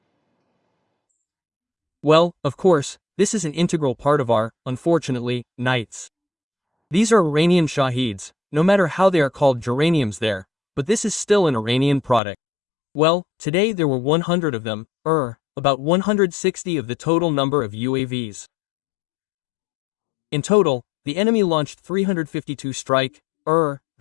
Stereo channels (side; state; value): right; drops out; at 12.2 s